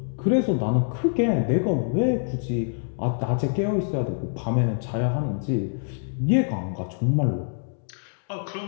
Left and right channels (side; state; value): right; silent; 62 dB below the other